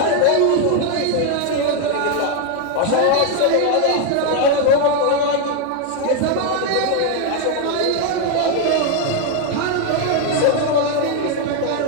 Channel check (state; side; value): different; both; correlation 0.01